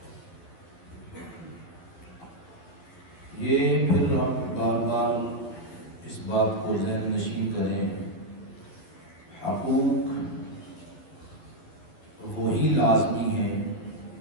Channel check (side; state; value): right; late; 12 ms